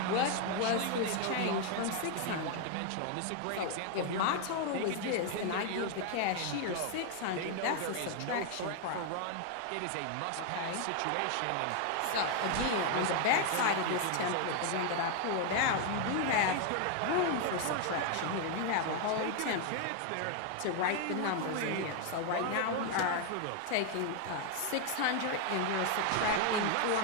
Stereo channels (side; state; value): both; different; correlation 0.00